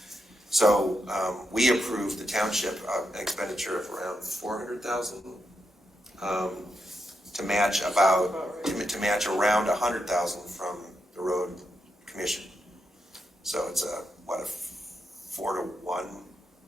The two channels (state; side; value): normal; both; correlation 0.84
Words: So we approved the township an expenditure of around $400,000 to match around $100,000 from the road commission. So it's a 4-to-1